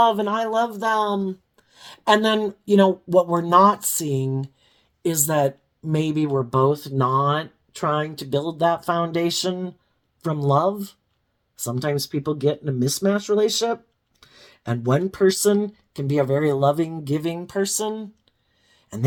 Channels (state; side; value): identical; both; correlation 1.00